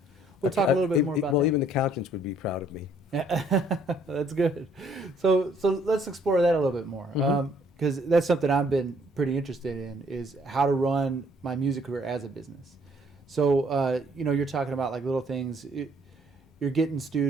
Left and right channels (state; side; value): normal; both; correlation 0.63